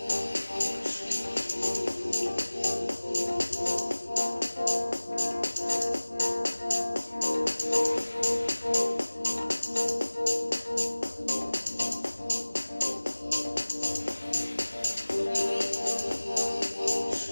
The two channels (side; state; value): both; inverted; correlation -1.00